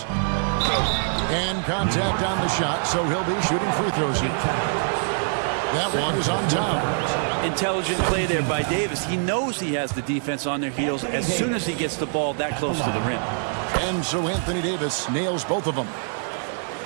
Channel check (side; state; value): left; silent; digital silence